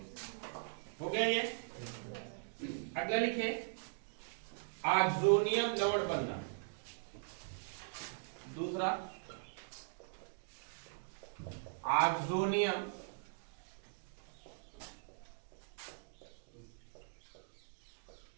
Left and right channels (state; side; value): silent; left; digital silence